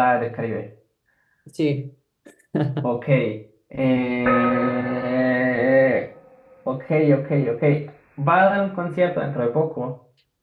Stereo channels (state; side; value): identical; both; correlation 1.00